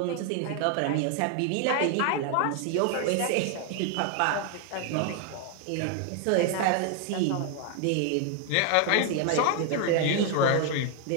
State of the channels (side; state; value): both; different; correlation 0.00